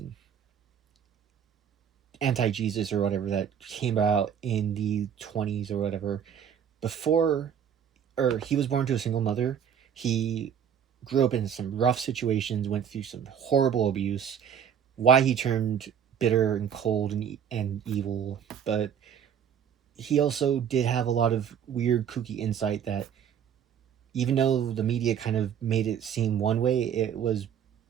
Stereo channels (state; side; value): quieter; left; 8.4 dB